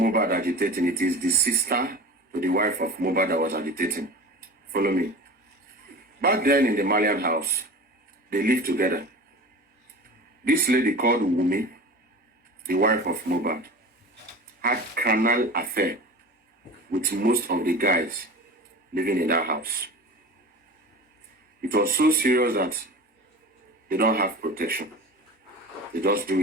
agitating, it is the sister to the wife of Mohbad that was agitating. Follow me. Back then in the Malian house, they lived together. This lady called Wumi, the wife of Mohbad, had carnal affair with most of the guys living in that house. It was so serious that they don't have protection. They just do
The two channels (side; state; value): both; normal; correlation 0.35